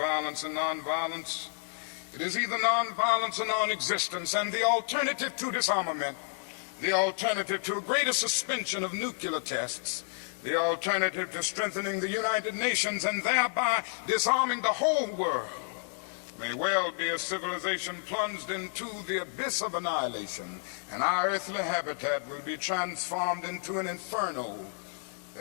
and nonviolence. It is either nonviolence or non-existence, and the alternative to disarmament, the alternative to a greater suspension of nuclear tests, the alternative to strengthening the United Nations and thereby disarming the whole world, may well be a civilization plunged into the abyss of annihilation, and our earthly habitat will be transformed into an inferno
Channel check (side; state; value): right; silent; 57 dB below the other